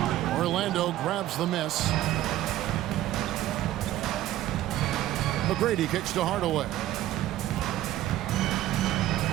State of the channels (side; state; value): left; quieter; 14.1 dB